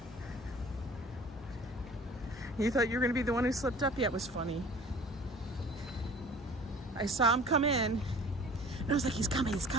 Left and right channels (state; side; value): normal; both; correlation 0.46